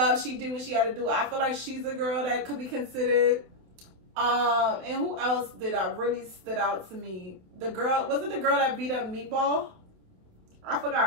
She did what she had to do. I feel like she's a girl that could be considered. And who else did I really stood out to me? The girl, was it the girl that beat up Meatball? I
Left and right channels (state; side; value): late; left; 28 ms